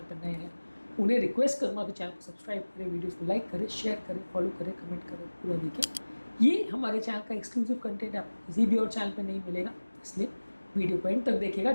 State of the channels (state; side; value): inverted; both; correlation -1.00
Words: पर नए हैं उन्हें रिक्वेस्ट करूँगा कि चैनल को सब्सक्राइब करें, वीडियोस को लाइक करें, शेयर करें, फॉलो करें, कमेंट करें, पूरा देखें। ये हमारे चैनल का एक्सक्लूसिव कंटेंट आपको किसी भी और चैनल पर नहीं मिलेगा, इसलिए वीडियो को एंड तक देखिएगा।